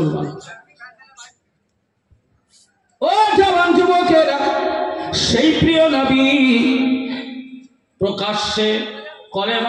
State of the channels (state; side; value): identical; both; correlation 1.00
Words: ও জওয়ান যুবকেরা, সেই প্রিয় নবী প্রকাশ্যে